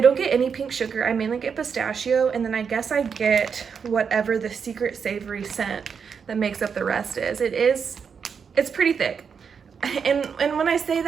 don't get any pink sugar. I mainly get pistachio, and then I guess I get whatever the secret savory scent that makes up the rest is. It's pretty thick. And when I say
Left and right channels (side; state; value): left; quieter; 6.4 dB